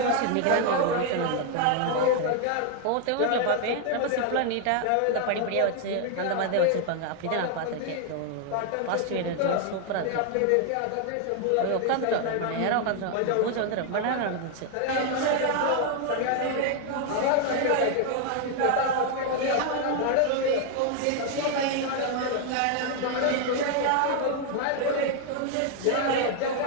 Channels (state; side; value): different; both; correlation 0.00